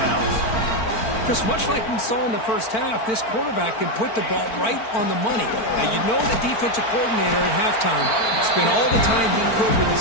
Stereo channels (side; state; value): right; late; 4.5 ms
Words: Chris, much like we saw in the first half, this quarterback can put the ball right on the money. Now, you know the defensive coordinator at halftime spent all the time he could with